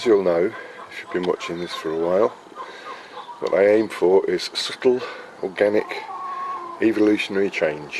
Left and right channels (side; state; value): both; identical; correlation 1.00